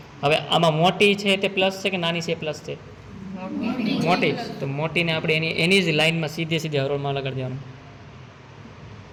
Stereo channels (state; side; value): identical; both; correlation 1.00